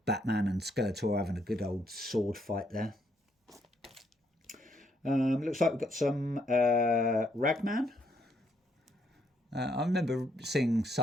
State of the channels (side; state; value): both; normal; correlation 0.72